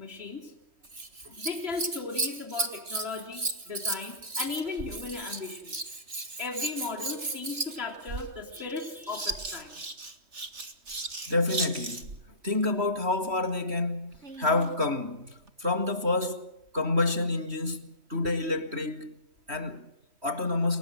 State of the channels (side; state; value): left; late; 3.3 ms